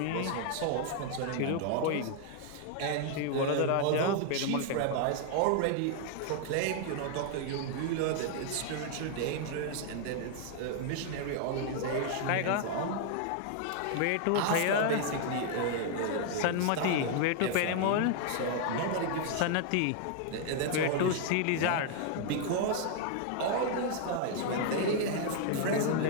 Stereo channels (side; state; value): both; different; correlation 0.00